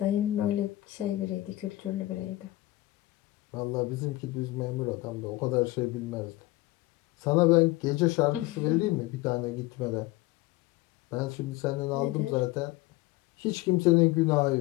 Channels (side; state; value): right; quieter; 18.4 dB